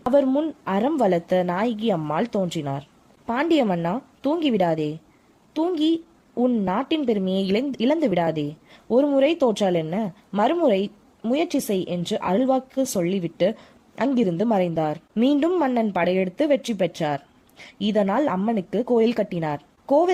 அவர் முன் அறம் வளர்த்த நாயகி அம்மாள் தோன்றினார். பாண்டிய மன்னா, தூங்கிவிடாதே, தூங்கி உன் நாட்டின் பெருமையை இழந்து விடாதே. ஒரு முறை தோற்றால் என்ன, மறுமுறை முயற்சி செய் என்று அருள்வாக்கு சொல்லிவிட்டு அங்கிருந்து மறைந்தார். மீண்டும் மன்னன் படையெடுத்து வெற்றி பெற்றார். இதனால் அம்மனுக்கு கோயில் கட்டினார்.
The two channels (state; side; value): identical; both; correlation 1.00